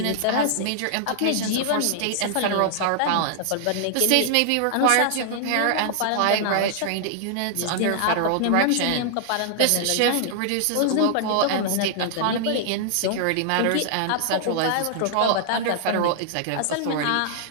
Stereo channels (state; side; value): different; both; correlation -0.01